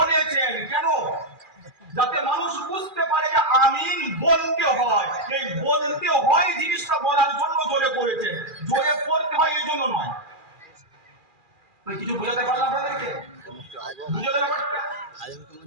কেন? যাতে মানুষ বুঝতে পারে যে আমিন বলতে হয়। এই বলতে হয় জিনিসটা বলার জন্য জোরে পড়েছেন, জোরে পড়তে হয় এই জন্য নয়। কিছু বোঝাতে পারলাম আপনাদেরকে? বুঝে গেল ব্যাপারটা?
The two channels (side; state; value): left; late; 2.4 ms